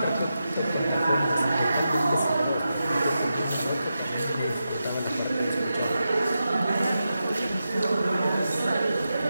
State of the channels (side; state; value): both; inverted; correlation -0.89